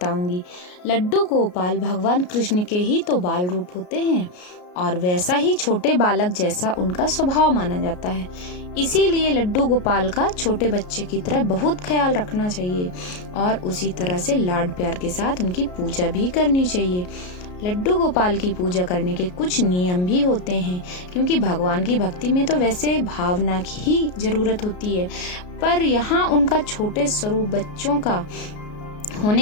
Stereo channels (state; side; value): late; right; 33 ms